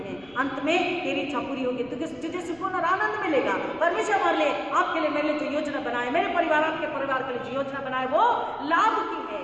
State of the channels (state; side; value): noise; left; rumble, 29 dB below the sound